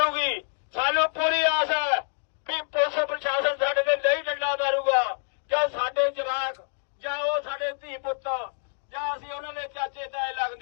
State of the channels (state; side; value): silent; right; digital silence